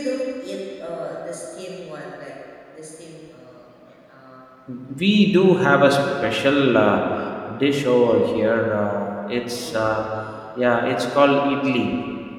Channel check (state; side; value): identical; both; correlation 1.00